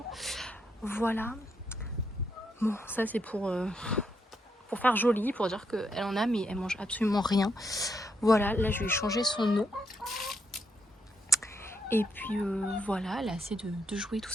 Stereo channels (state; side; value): normal; both; correlation 0.78